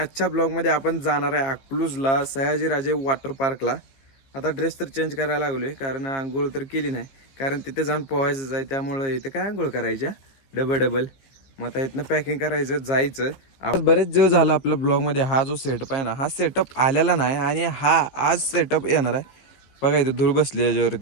ब्लॉगमध्ये आपण जाणार आहे अकलूजला सयाजीराजे वॉटर पार्कला. आता ड्रेस तर चेंज करायला लागलोय कारण आंघोळ तर केली नाही, कारण तिथे जाऊन पोहायचं आहे. त्यामुळे इथं काय आंघोळ करायच्या डबल. मग आता इथनं पॅकिंग करायचं जायचं. आपण बरेच दिवस झाला आपल्या ब्लॉगमध्ये हा जो सेटअप आहे ना, हा सेटअप आलेला नाही आणि हा आज सेटअप येणार आहे. बघा इथं धूळ बसली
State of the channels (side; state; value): right; late; 15 ms